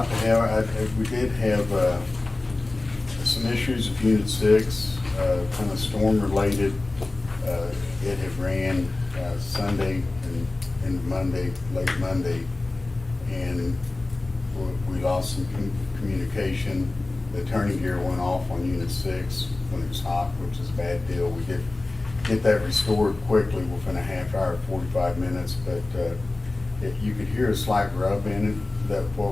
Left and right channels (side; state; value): right; quieter; 3.0 dB